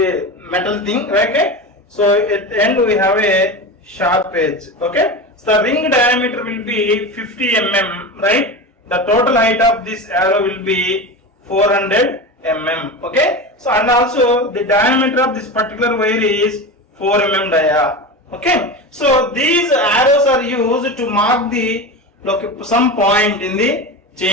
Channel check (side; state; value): both; normal; correlation 0.25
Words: a metal thing, right? Okay? So at the end we have a sharp edge, okay? So the ring diameter will be 50 mm, right? The total height of this arrow will be 400 mm, okay? So and also the diameter of this particular wire is 4 mm dia, okay? So these arrows are used to mark the some point in the